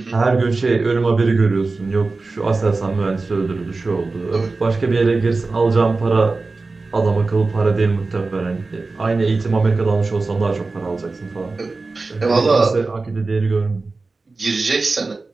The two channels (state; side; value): quieter; left; 3.7 dB